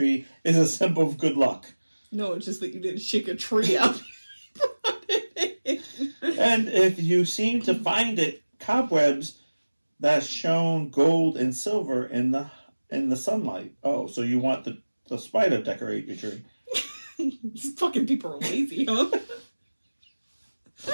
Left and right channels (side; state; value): both; inverted; correlation -1.00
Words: is a symbol of good luck. No, it's just that you didn't shake a tree out. And if you seem to find it, cobwebs that shone gold and silver in the sunlight. Oh, so you want the spider decorate your tree? These fucking people are lazy, huh?